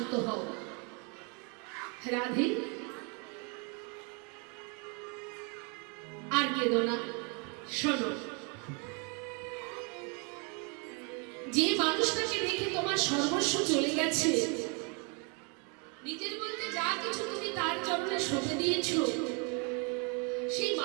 হও। রাধে, আর কেঁদো না, শোনো। যে মানুষটাকে দেখে তোমার সর্বস্ব চলে গেছে, নিজের বলতে যা কিছু তুমি তার চরণে সঁপে দিয়েছ, সেই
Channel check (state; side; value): quieter; left; 34.6 dB